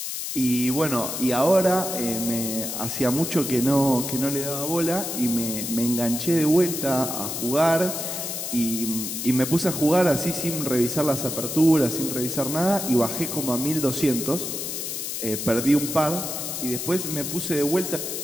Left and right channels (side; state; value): left; noise; hiss, 4 dB below the sound